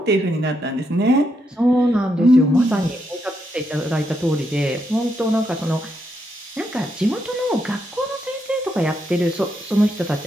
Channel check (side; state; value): both; normal; correlation 0.80